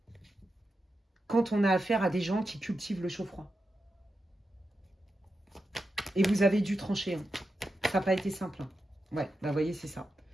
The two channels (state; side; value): normal; both; correlation 0.89